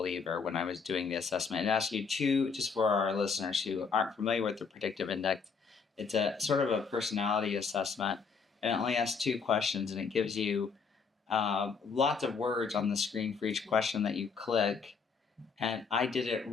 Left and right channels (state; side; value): quieter; right; 5.5 dB